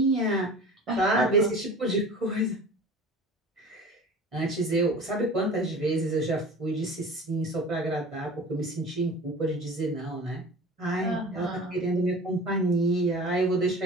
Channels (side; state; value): both; normal; correlation 0.39